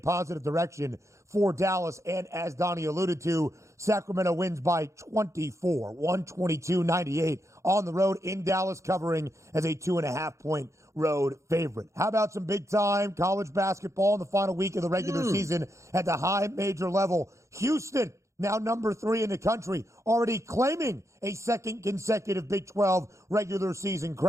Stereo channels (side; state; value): left; late; 0.14 ms